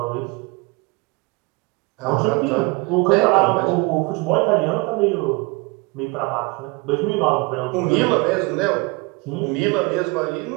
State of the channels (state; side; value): quieter; left; 26.8 dB